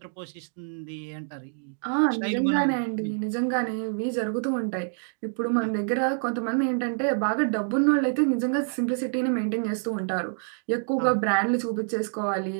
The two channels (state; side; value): silent; left; digital silence